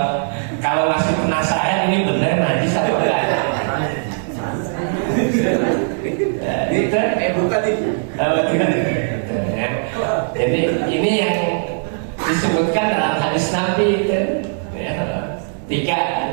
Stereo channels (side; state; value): left; silent; digital silence